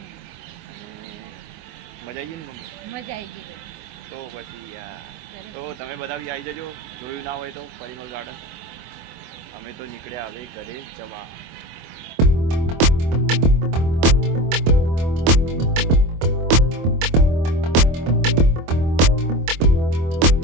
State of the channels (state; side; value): late; left; 24 ms